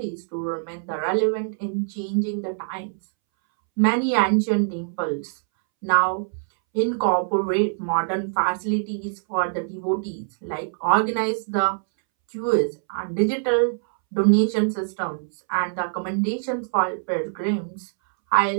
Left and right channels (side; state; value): left; silent; 63 dB below the other